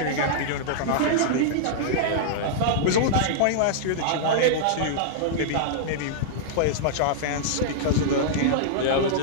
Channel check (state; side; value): different; both; correlation -0.02